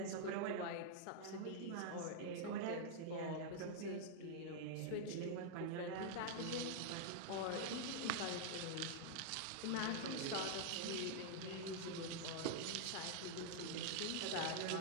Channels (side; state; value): both; different; correlation -0.01